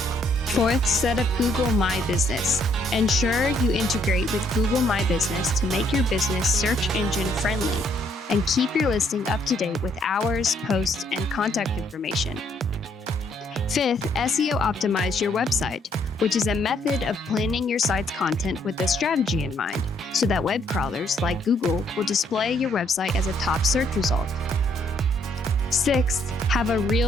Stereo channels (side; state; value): both; normal; correlation 0.69